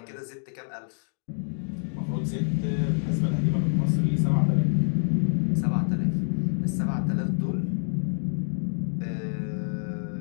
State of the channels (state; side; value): silent; right; digital silence